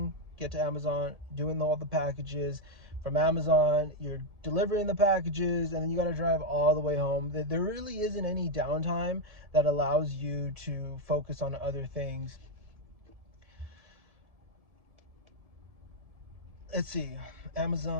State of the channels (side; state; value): left; late; 1.7 ms